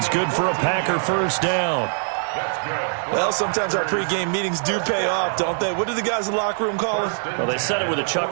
good for a Packer 1st down. Well, sometimes our pregame meetings do pay off, don't they? What do the guys in the locker room call him? Well, they said it with a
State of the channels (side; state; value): left; silent; digital silence